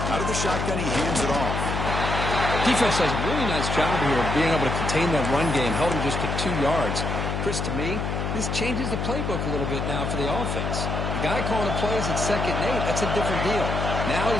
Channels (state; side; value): noise; left; hum, 2 dB below the sound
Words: Out of the shotgun, he hands it off. Defense does a really nice job here of being able to contain that run game, held him just to 2 yards. Chris, to me, this changes the playbook a little bit now for the offense. The guy calling the plays at 2nd and 8, that's a different deal. Now